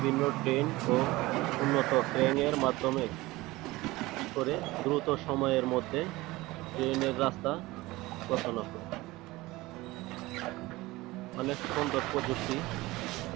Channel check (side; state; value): left; quieter; 19.9 dB